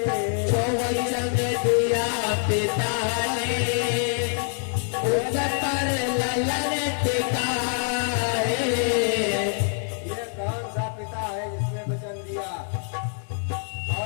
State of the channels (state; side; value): silent; right; 62 dB below the other